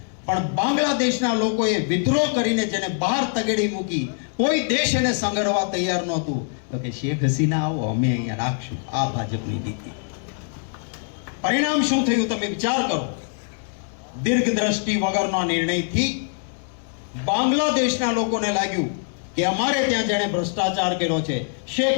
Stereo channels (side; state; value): right; silent; 63 dB below the other